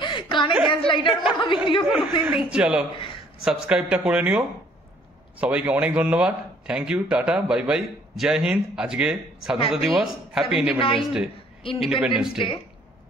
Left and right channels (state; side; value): normal; both; correlation 0.60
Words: কানে গ্যাস লাইটার মতো ভিডিও কোনোদিন দেখি। চলো সাবস্ক্রাইবটা করে নিও। সবাইকে অনেক ধন্যবাদ, thank you, tata, bye bye, Jai Hind. আজকে স্বাধীনতা দিবস, হ্যাপি ইন্ডিপেন্ডেন্স ডে।